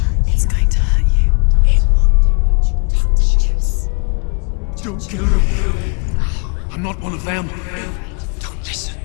It's going to hurt you. It's dangerous. Don't kill me. I'm not one of them. Don't listen.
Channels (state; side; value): quieter; right; 34.7 dB